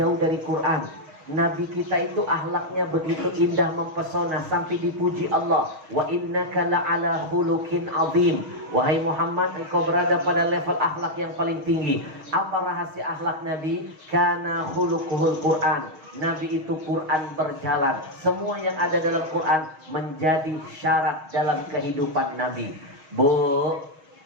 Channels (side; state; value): left; late; 6.4 ms